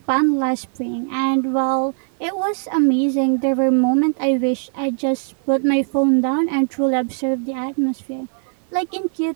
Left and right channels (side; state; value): left; silent; digital silence